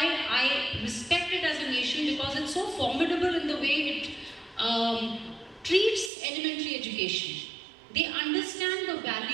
I respect it as a nation, because it's so formidable in the way it treats elementary education. They understand the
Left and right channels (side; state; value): left; drops out; at 6.1 s